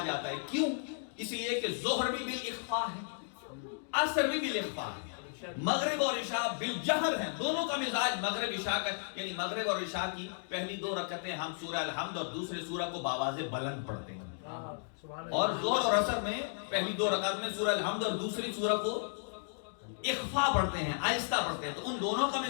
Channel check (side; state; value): right; silent; digital silence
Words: جاتا ہے، کیوں؟ اس لیے کہ ظہر بھی بالاخفاء ہے، عصر بھی بالاخفاء ہے، مغرب اور عشاء بالجہر ہیں، دونوں کا مزاج مغرب عشاء کا، یعنی مغرب اور عشاء کی پہلی 2 رکعتیں ہم سورہ الحمد اور دوسرے سورہ کو باواز بلند پڑھتے ہیں، اور ظہر اور عصر میں پہلی 2 رکعت میں سورہ الحمد اور دوسری سورہ کو اخفا پڑھتے ہیں، آہستہ پڑھتے ہیں، تو ان دونوں کا